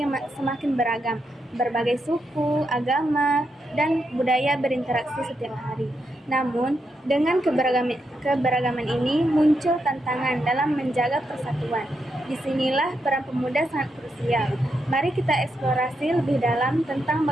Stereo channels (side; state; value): both; normal; correlation 0.82